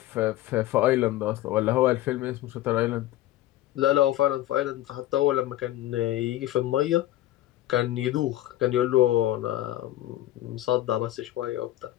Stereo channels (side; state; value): right; quieter; 14.6 dB